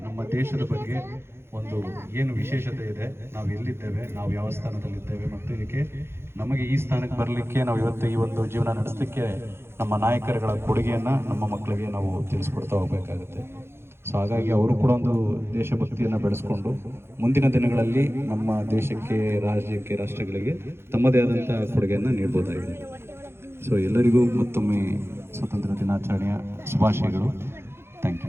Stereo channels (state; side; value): late; left; 0.12 ms